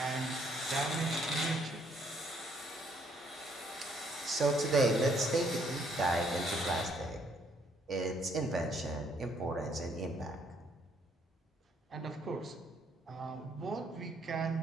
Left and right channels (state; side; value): normal; both; correlation 0.68